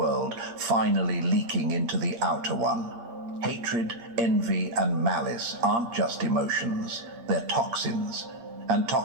finally leaking into the outer one. Hatred, envy, and malice aren't just emotions. They're toxins. And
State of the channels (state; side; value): late; left; 8.6 ms